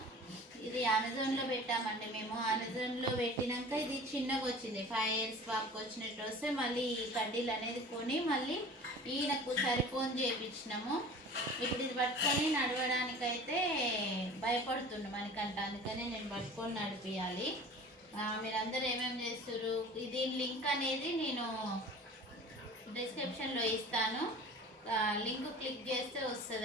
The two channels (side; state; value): both; normal; correlation 0.41